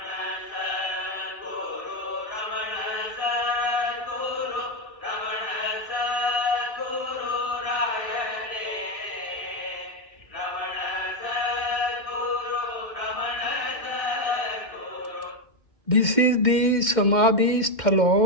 This is the Samadhi Sthal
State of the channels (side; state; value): right; late; 2.1 ms